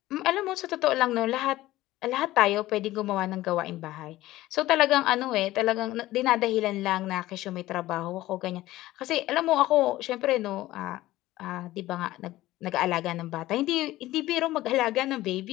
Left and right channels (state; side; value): quieter; right; 16.4 dB